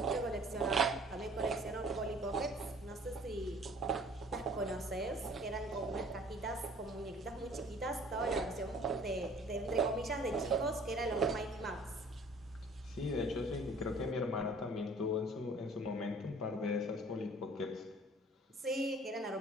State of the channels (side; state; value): both; normal; correlation 0.52